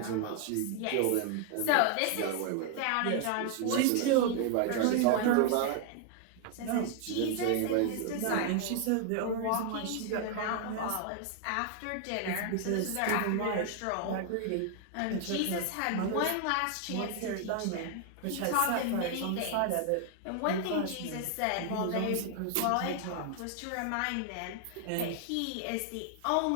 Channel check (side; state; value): both; different; correlation 0.00